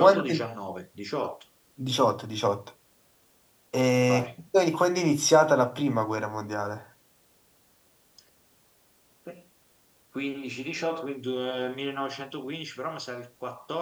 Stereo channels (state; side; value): identical; both; correlation 1.00